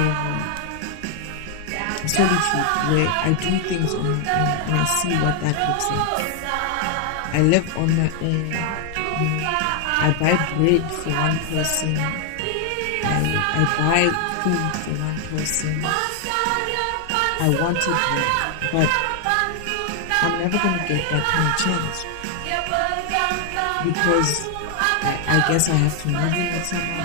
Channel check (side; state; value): both; different; correlation 0.00